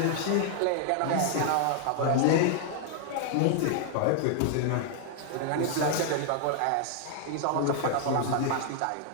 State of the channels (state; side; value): different; both; correlation 0.00